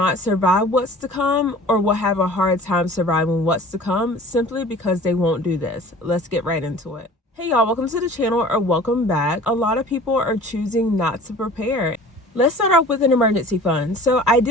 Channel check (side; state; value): both; normal; correlation 0.45